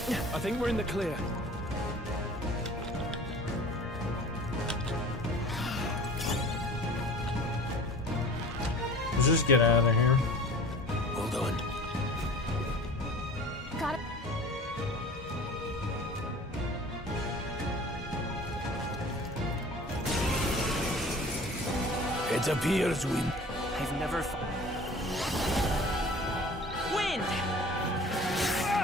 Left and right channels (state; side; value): normal; both; correlation 0.43